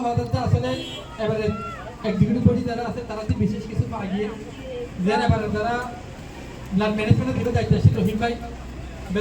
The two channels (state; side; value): identical; both; correlation 1.00